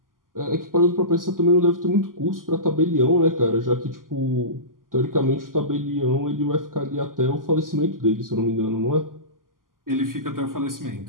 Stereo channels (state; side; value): late; left; 0.91 ms